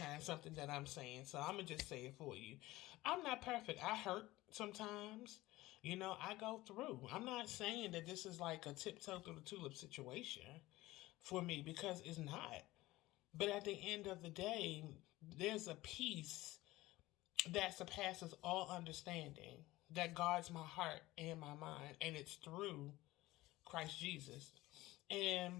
something that I'm saying. So I'm going to just say it for you. I'm not perfect. I hurt sometimes. I go through. I'm not saying that this is like a tiptoe through the tulip situation for me because it's not. But at the end of the day, there's a peace that surpasses all understanding that guards my heart and my mind, and it's through Christ Jesus.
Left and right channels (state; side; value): quieter; right; 18.2 dB